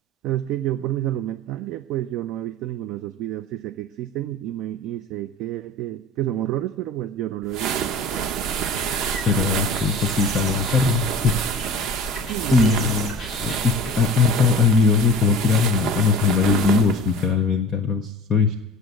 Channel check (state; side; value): normal; both; correlation 0.38